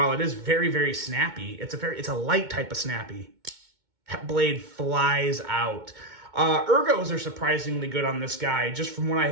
it is very, very snappy, it's a light type of snappy. That blade flies out. Ergos are surprisingly good on this guy. Just from what I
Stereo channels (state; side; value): late; left; 2.2 ms